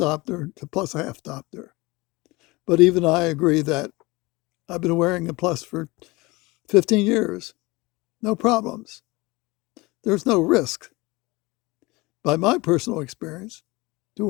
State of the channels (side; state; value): right; quieter; 23.0 dB